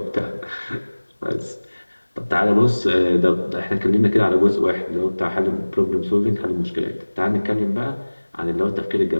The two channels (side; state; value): both; inverted; correlation -1.00